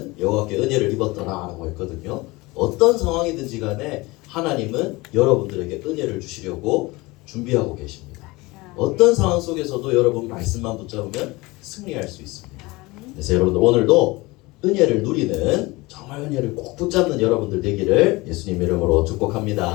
여호와께 은혜를 입었더라라고 했거든요. 어떤 상황이든지 간에 하나님은 여러분들에게 은혜를 주시려고 준비하고 계십니다. 어떤 상황 속에서도 여러분 말씀만 붙잡으면 승리할 수 있습니다. 그래서 여러분들 오늘도 은혜를 누리는, 정말 은혜를 꼭 붙잡는 여러분들 되기를 예수님 이름으로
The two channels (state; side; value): quieter; right; 22.5 dB